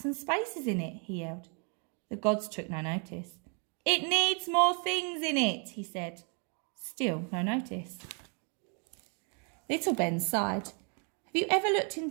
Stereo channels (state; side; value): quieter; left; 38.7 dB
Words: and spaces in it?" he yelled. The gods took no notice. "It needs more things in it," he said. Still no notice. Little Ben sighed. "Have you ever looked